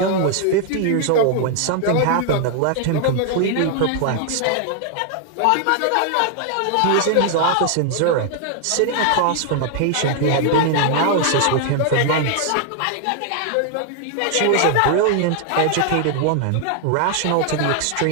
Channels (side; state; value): both; different; correlation 0.00